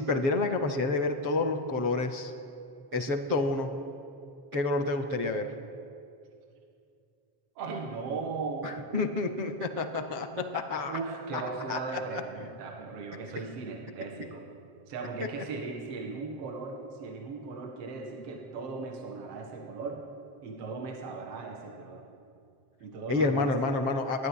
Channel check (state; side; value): late; left; 7.5 ms